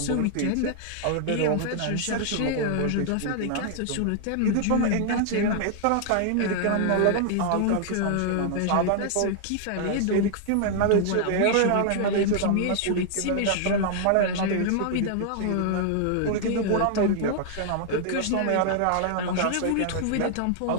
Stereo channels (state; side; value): different; both; correlation 0.00